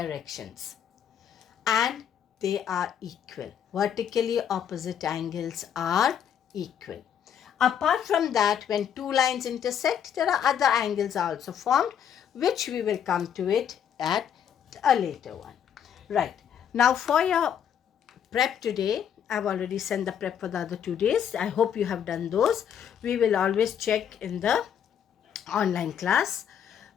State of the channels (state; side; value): quieter; right; 8.7 dB